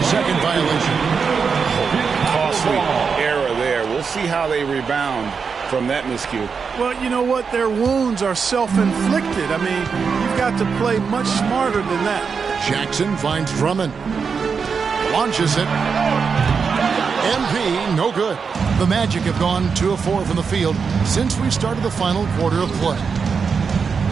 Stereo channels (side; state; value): left; quieter; 5.7 dB